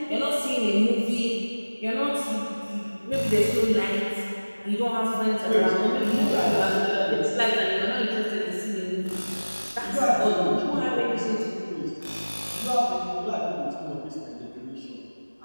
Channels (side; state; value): both; inverted; correlation -1.00